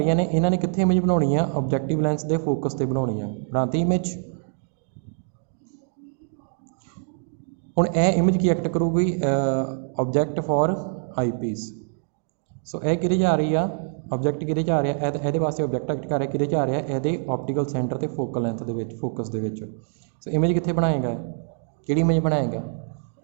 ਨੇ, ਇਹਨਾਂ ਨੇ ਕਿੱਥੇ ਇਮੇਜ ਬਣਾਉਣੀ ਆ? ਆਬਜੈਕਟਿਵ ਲੈਂਸ ਦੇ ਫੋਕਸ 'ਤੇ ਬਣਾਉਣੀ ਆ। ਬਣਾਤੀ ਇਮੇਜ। ਹੁਣ ਇਹ ਇਮੇਜ ਕੀ ਐਕਟ ਕਰੂਗੀ? Object for eye piece. So ਇਹ ਕਿਹਦੇ 'ਚ ਆ ਰਹੀ ਆ? ਆਬਜੈਕਟ ਕਿਹਦੇ 'ਚ ਆ ਰਿਹਾ? ਇਹਦੇ ਵਾਸਤੇ ਆਬਜੈਕਟ ਐਕਟ ਕਰ ਰਿਹਾ, ਕਿਹਦੇ 'ਚ ਆ ਰਿਹਾ? ਇਹਦੇ ਆਪਟੀਕਲ ਸੈਂਟਰ ਤੇ ਫੋਕਲ ਲੈਂਥ ਦੇ ਵਿੱਚ, ਫੋਕਸ ਦੇ ਵਿੱਚ। ਸੋ ਇਮੇਜ ਕਿੱਥੇ ਬਣਾਏਗਾ? ਕਿਹੜੀ ਇਮੇਜ ਬਣਾਏਗਾ?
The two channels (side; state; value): left; silent; digital silence